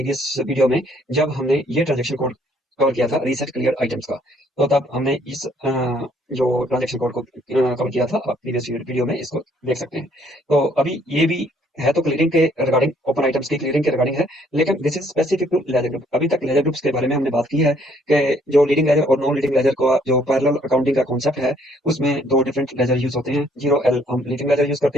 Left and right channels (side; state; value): both; normal; correlation 0.64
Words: वीडियो में, जब हमने ये ट्रांजैक्शन कोड कवर किया था रीसेट क्लियर आइटम्स का। तो तब हमने इस जो ट्रांजैक्शन कोड को कवर किया था, आप प्रीवियस वीडियो में इसको देख सकते हैं। तो अभी ये भी है तो क्लियरिंग के रिगार्डिंग, ओपन आइटम्स की क्लियरिंग के रिगार्डिंग है, लेकिन this is specific to ledger group. अभी तक लेजर ग्रुप्स के बारे में हमने बात की है कि जो लीडिंग लेजर और नॉन लीडिंग लेजर का जो पैरेलल अकाउंटिंग का कॉन्सेप्ट है, उसमें दो डिफरेंट लेजर यूज होते हैं। 0L हम लीडिंग लेजर यूज